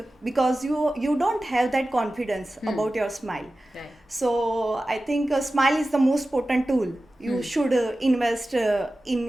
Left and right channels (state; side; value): normal; both; correlation 0.95